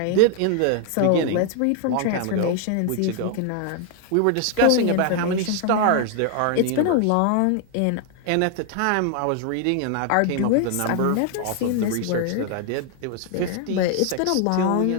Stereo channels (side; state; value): both; different; correlation 0.00